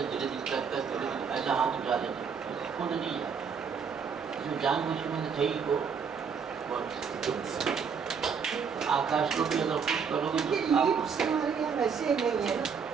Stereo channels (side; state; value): left; quieter; 6.3 dB